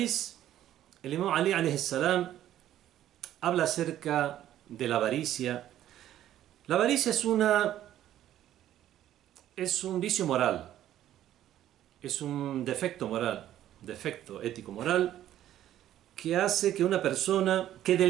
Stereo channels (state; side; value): quieter; left; 12.2 dB